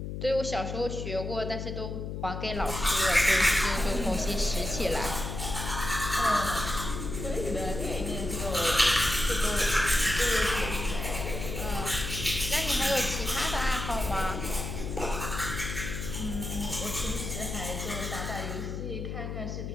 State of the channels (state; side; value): noise; left; hum, 5 dB below the sound